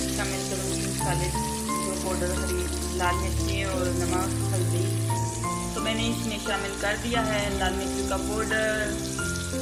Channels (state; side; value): identical; both; correlation 1.00